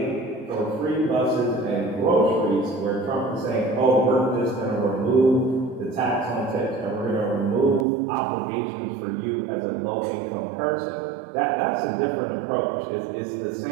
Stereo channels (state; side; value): drops out; left; at 7.9 s